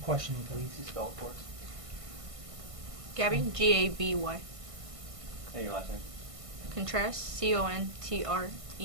questioning, please. Can you spell it for us? Gabby, G-A-B-Y. And your last name? Contreras, C-O-N-T-R-E-R-A-S.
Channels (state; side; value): late; left; 1.5 ms